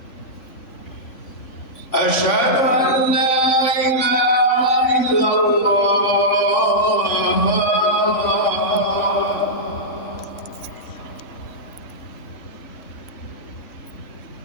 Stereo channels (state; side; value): late; right; 3.6 ms